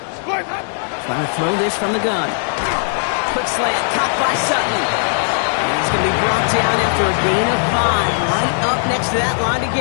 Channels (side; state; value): right; silent; digital silence